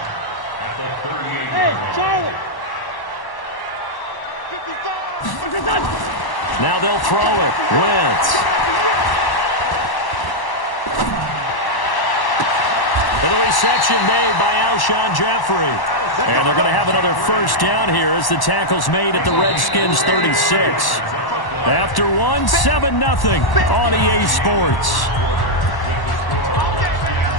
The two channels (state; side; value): late; right; 1.1 ms